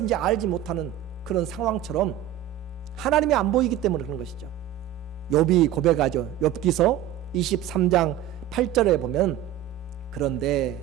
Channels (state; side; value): quieter; left; 11.7 dB